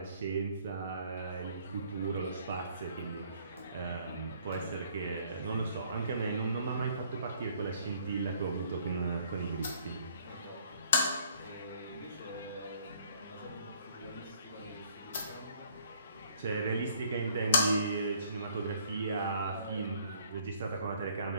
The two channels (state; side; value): inverted; both; correlation -0.62